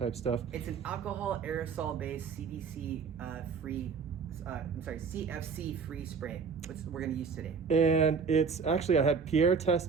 stuff. It's an alcohol aerosol based CDC free. CFC free spray, which we're going to use today. And it's actually, I had Pierre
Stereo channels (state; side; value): quieter; left; 5.7 dB